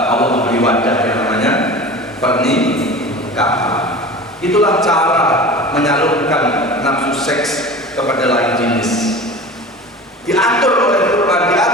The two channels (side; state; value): both; normal; correlation 0.35